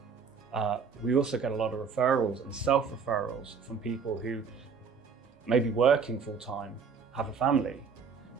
We also get a lot of referrals and self-referrals from people who may be working full-time, have a family,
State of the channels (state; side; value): quieter; left; 6.0 dB